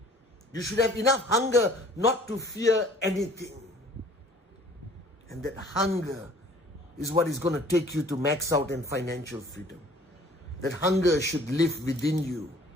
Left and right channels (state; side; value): normal; both; correlation 0.52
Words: You should have enough hunger not to fear anything. And that hunger is what is going to take you to max out in financial freedom. That hunger should live within you.